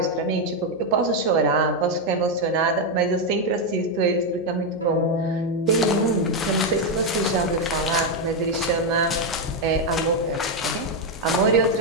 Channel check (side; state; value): right; noise; hum, 26 dB below the sound